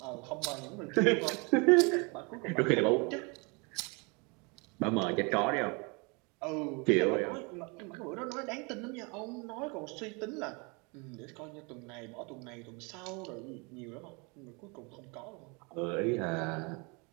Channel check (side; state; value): left; quieter; 30.6 dB